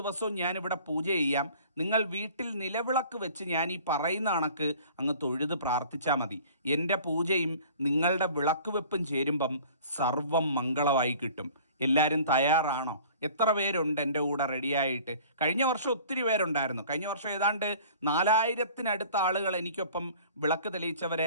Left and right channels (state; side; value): inverted; both; correlation -0.48